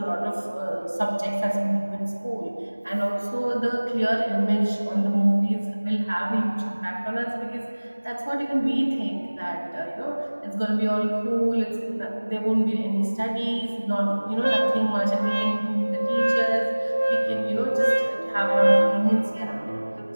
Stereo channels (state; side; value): inverted; both; correlation -1.00